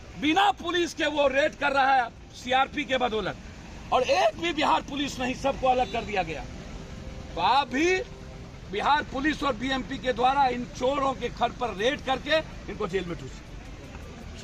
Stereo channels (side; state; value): both; identical; correlation 1.00